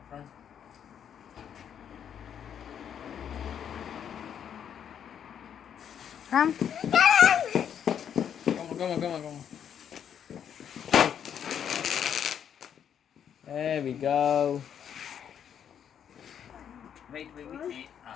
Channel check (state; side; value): quieter; right; 8.7 dB